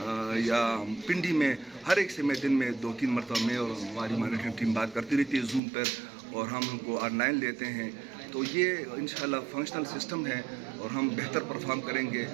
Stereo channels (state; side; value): drops out; left; at 5.6 s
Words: या पिंडी में हर एक से मैं दिन में 2-3 मरतबा में और हमारी मॉनिटरिंग टीम बात करती रहती है जूम पर, और हम उनको ऑनलाइन लेते हैं। तो ये इंशाल्लाह फंक्शनल सिस्टम है और हम बेहतर परफॉर्म करेंगे।